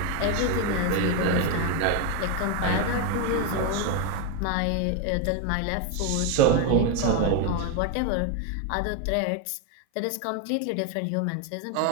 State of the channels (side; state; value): both; different; correlation 0.01